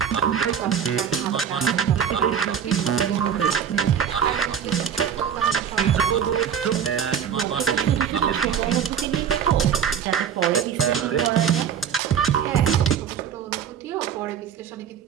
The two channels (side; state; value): left; quieter; 8.1 dB